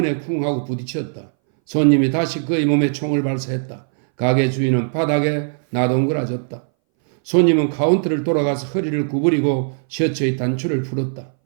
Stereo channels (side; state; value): left; silent; 63 dB below the other